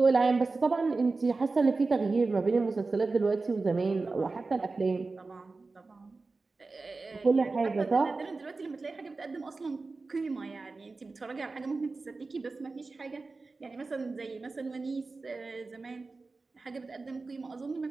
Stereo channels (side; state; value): left; quieter; 3.8 dB